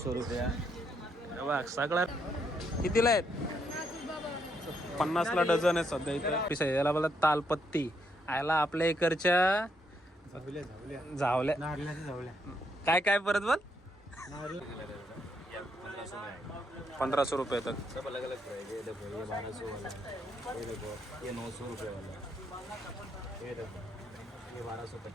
रुपया। बघ सगळ्यात कितीला आहेत 50ला डझन आहे सध्या इथं याला बोला तालपत्ती आयला आपल्या इकडच्या झावल्या काय काय परत बोल 1500 रुपये तक सब अलग अलग प्राइस है। ये देखो ये 1200 वाला है, ये देखो ये 900 रुपये वाला है, ये देखो ये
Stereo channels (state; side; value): normal; both; correlation 0.76